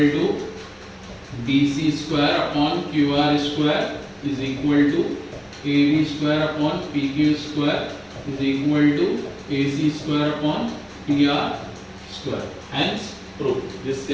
BC square upon QR square is equal to AB square upon PQ square is equal to AC square upon PR square. Hence, proof. This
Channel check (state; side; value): identical; both; correlation 1.00